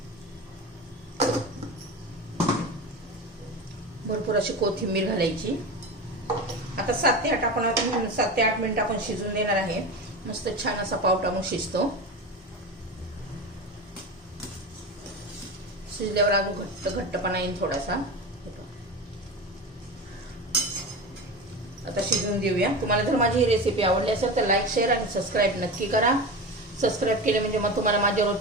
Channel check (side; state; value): both; normal; correlation 0.26